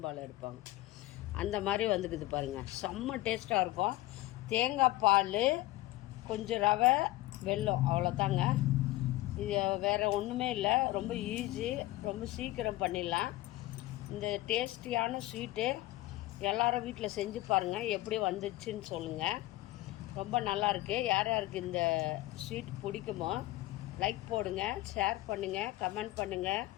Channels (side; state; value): right; quieter; 17.4 dB